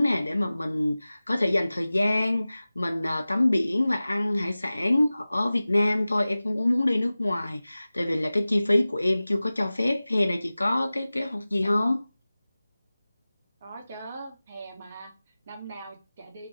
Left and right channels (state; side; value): inverted; both; correlation -0.97